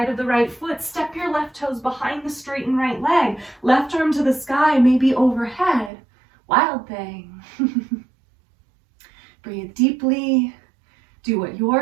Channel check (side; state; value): left; drops out; at 5.9 s